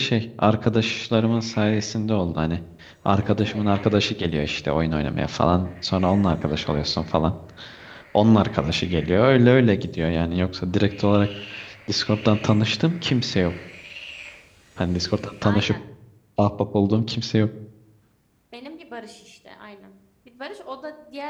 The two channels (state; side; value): identical; both; correlation 1.00